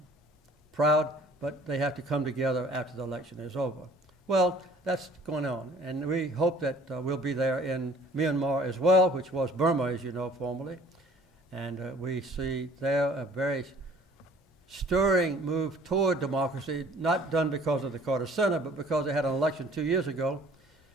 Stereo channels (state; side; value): normal; both; correlation 0.53